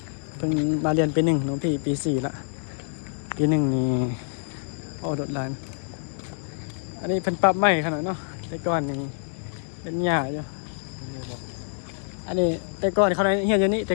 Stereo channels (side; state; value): right; silent; digital silence